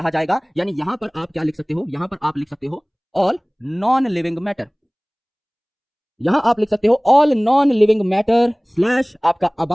जाएगा। यानी यहां पर आप क्या लिख सकते हो? यहां पर आप लिख सकते हो ऑल नॉन लिविंग मैटर। यहां आप लिख सकते हो all non living matter slash आपका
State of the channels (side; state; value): both; identical; correlation 1.00